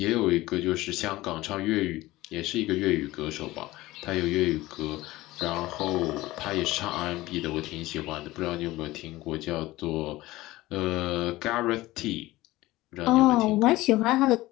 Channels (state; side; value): quieter; right; 18.2 dB